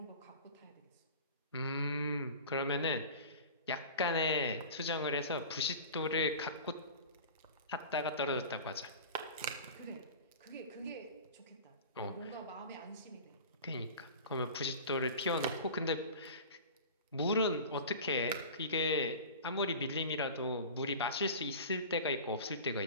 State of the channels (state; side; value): inverted; both; correlation -0.36